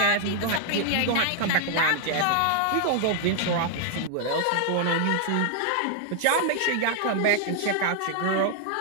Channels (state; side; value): different; both; correlation 0.00